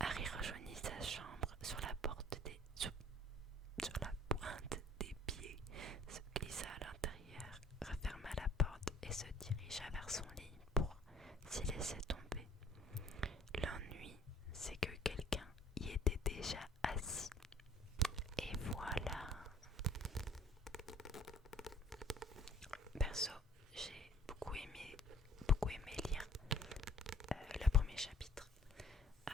rejoignit sa chambre sur la pointe des pieds, se glissa à l'intérieur, referma la porte et se dirigea vers son lit pour s'y laisser tomber. L'ennui, c'est que quelqu'un y était déjà assis. Et voilà. Perso, j'ai beaucoup aimé lire le premier chapitre.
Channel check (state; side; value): normal; both; correlation 0.54